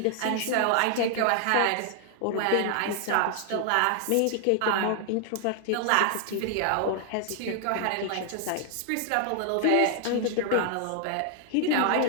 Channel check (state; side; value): different; both; correlation 0.00